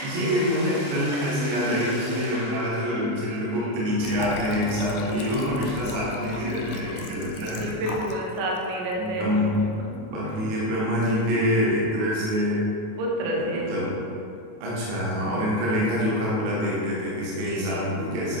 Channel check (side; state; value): left; late; 28 ms